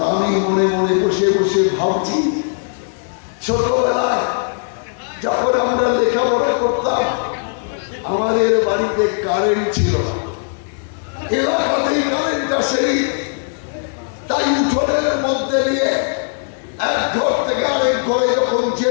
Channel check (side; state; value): right; silent; 67 dB below the other